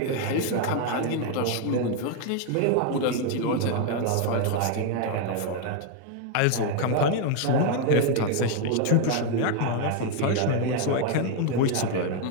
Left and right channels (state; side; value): different; both; correlation 0.01